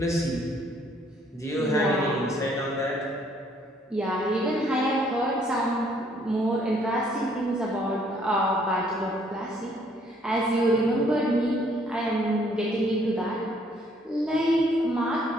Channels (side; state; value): both; normal; correlation 0.65